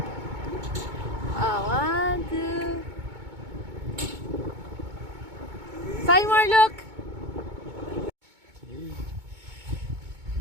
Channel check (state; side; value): late; left; 2.2 ms